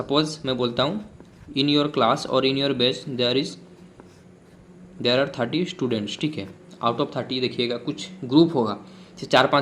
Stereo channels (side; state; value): both; identical; correlation 1.00